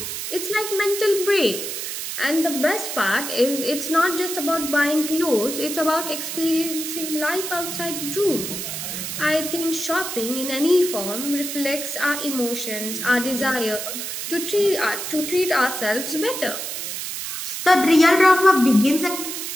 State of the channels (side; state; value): right; noise; hiss, 5 dB below the sound